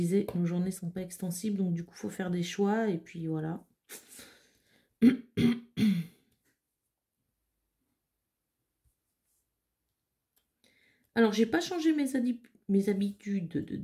nos journées sont pas extensibles, donc du coup, il faut faire des choix, et puis voilà. Alors, j'ai pas changé mes habitudes de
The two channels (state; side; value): identical; both; correlation 1.00